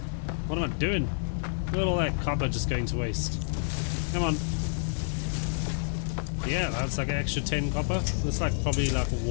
What am I doing? Look at all that copper just going to waste. Come on. Yeah, that's like an extra 10 copper. That's like probably like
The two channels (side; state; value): right; silent; 59 dB below the other